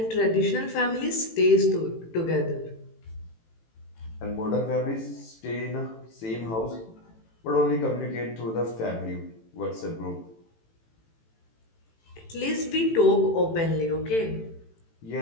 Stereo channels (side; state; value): right; late; 18 ms